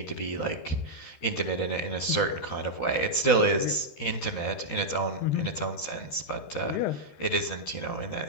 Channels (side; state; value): right; late; 13 ms